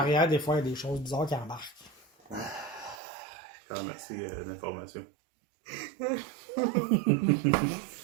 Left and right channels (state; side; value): drops out; left; at 3.0 s